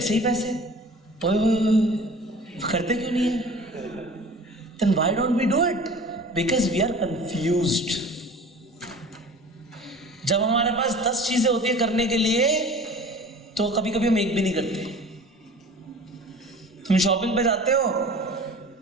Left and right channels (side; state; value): both; normal; correlation 0.42